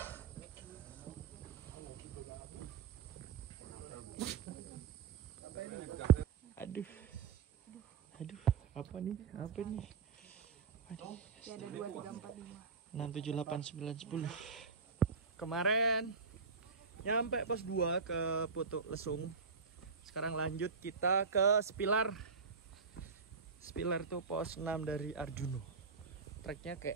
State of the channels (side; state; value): left; quieter; 5.2 dB